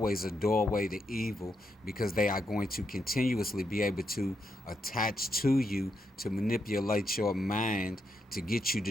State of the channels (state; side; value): normal; both; correlation 0.81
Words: a doorway to evil, because they are going to continuously be able to attach to you to manipulate your mind to get you